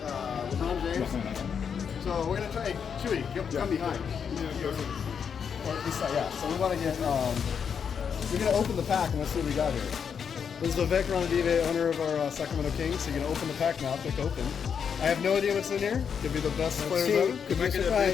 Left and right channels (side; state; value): right; quieter; 7.0 dB